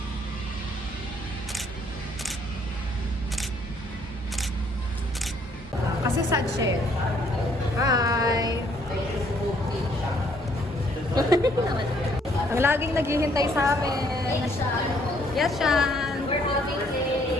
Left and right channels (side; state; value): both; normal; correlation 0.65